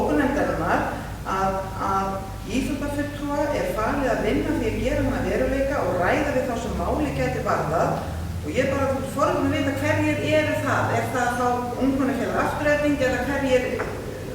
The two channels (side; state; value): both; identical; correlation 1.00